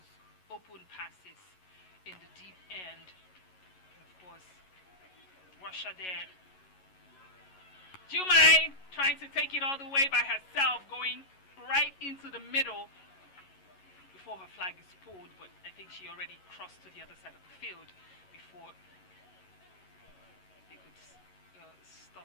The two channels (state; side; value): late; right; 11 ms